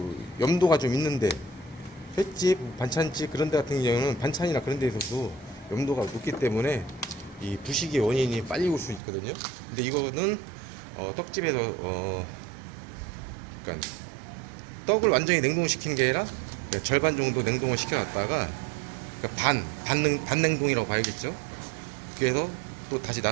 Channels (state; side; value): drops out; left; at 9.0 s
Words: 염도가 좀 있는데, 횟집, 반찬집 그런 데 같은 경우는 반찬이나 그런 데에서도 염도가 높기 때문에 이 부식의 원인이 빨리 올 수 있거든요. 근데 이거는 떡집에서 그러니까 떡을 완전히 냉동시킨 게 아니라 절반 정도 냉동을 시켜놨다가, 그러니까 반냉동이라고 봐야겠죠. 그래서 또 다시